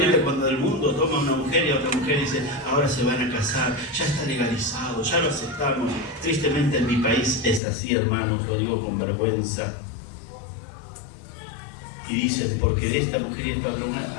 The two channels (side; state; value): right; drops out; at 7.6 s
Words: cuando el mundo toma a una mujer y a otra mujer y dice, ahora se van a casar, ya está legalizado, ya lo aceptamos. Tristemente en mi país es así, hermanos, lo digo con vergüenza. Y dicen, porque de esta mujer y esta otra mujer